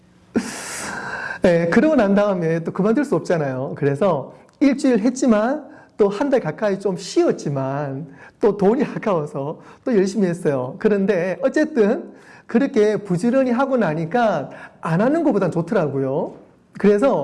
네, 그러고 난 다음에 또 그만둘 수 없잖아요. 그래서 일주일 했지만 또 한 달 가까이 좀 쉬었지만 또 돈이 아까워서 또 열심히 했어요. 그런데 어쨌든 그렇게 부지런히 하고 나니까 안 하는 것보단 좋더라고요.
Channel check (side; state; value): both; identical; correlation 1.00